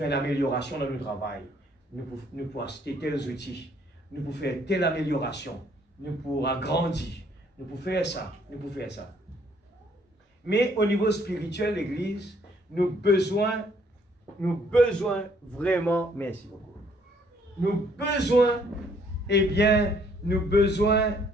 une amélioration dans le travail. Nous pouvons acheter tels outils. Nous pouvons faire telle amélioration. Nous pouvons agrandir. Nous pouvons faire ça. Nous pouvons faire ça. Mais au niveau spirituel, l'Église, nous besoin vraiment, merci beaucoup. Nous besoin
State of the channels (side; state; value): both; normal; correlation 0.65